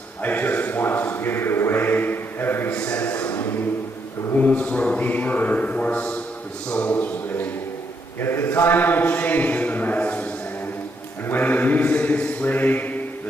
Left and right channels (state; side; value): normal; both; correlation 0.76